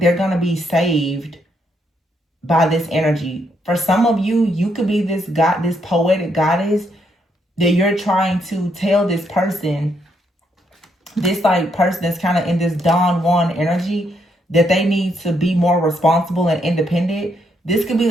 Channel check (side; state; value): both; normal; correlation 0.75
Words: gonna be saved by this energy. For some of you, you could be this poetic goddess that you're trying to tell this person, this like person that's kind of in this Don Juan energy, that they need to be more responsible and independent. This could be